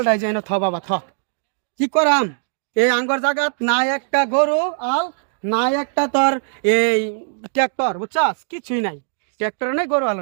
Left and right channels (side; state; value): left; silent; 66 dB below the other